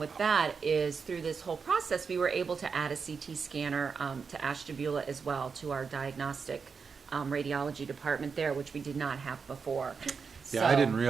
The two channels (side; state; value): left; quieter; 5.5 dB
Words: that is through this whole process, we were able to add a CT scanner to Ashtabula as well, to our diagnostic radiology department there, which we did not have before. Yeah, I So- didn't